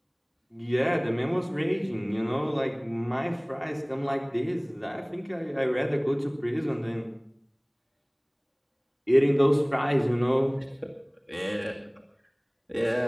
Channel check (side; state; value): both; identical; correlation 1.00